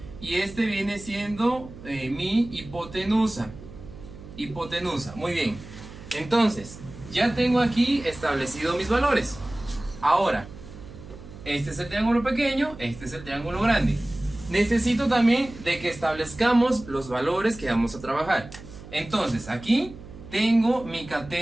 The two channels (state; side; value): noise; right; hum, 16 dB below the sound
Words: Y este viene siendo mi hipotenusa. Hipotenusa, muy bien. Entonces, ya tengo aquí establecido mis valores. Ahora, este es el triángulo pequeño, este es el triángulo grande. Necesito también de que establezcamos los valores que vamos a trabajar. Entonces, aquí tengo mi